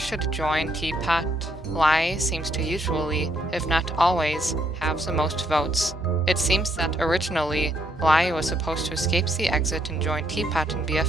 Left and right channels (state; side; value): normal; both; correlation 0.73